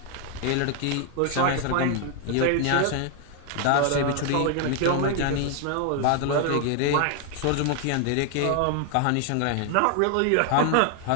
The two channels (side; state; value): both; different; correlation 0.00